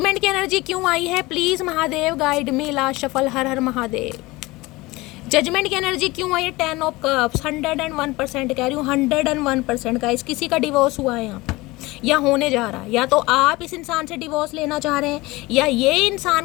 की एनर्जी क्यों आई है, please Mahadev guide me. Last shuffle. Her her Mahadev. Judgement की एनर्जी क्यों आई है, 10 ऑफ कप्स। 101% कह रही हूँ, 101% गाइस। किसी का डिवोर्स हुआ है यहाँ पर, या होने जा रहा है, या तो आप इस इंसान से डिवोर्स लेना चाह रहे हैं, या ये इंसान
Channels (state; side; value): quieter; right; 21.4 dB